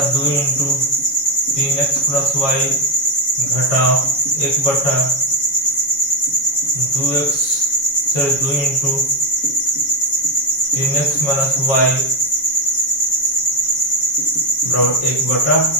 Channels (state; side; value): late; right; 7.1 ms